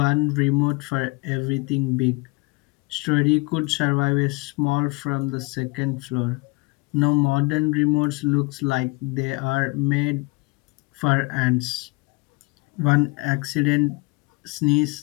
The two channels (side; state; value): right; quieter; 27.4 dB